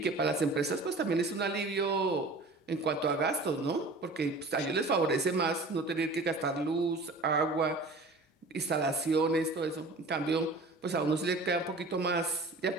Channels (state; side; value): quieter; left; 3.1 dB